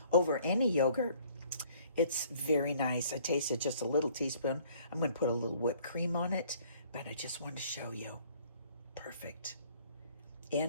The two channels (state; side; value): inverted; both; correlation -0.58